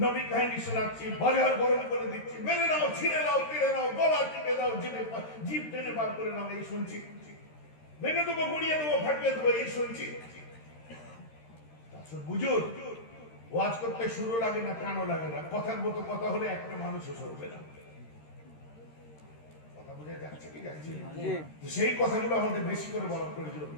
নবী কাহিনী শোনাচ্ছি, বাজার গরম করে দিচ্ছি, মেরে নাও, ছিঁড়ে নাও, কেড়ে নাও, গলা টিপে দাও, জিভ টেনে বার করে নাও, এই শুনছি। ভেঙে দেবো, গুড়িয়ে দেবো, ফাটিয়ে দেবো, এই শুনছি। বুঝুন, ওয়াজ করতে শুরু লাগে না, কানও লাগে না, কথার মতো কথা হলে একটা মানুষও সরবে না। কথা বুঝে যাচ্ছে কি যাচ্ছে? সেই কথাগুলো আমাদের বেশি করে বলার প্রয়োজন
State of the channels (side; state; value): right; late; 13 ms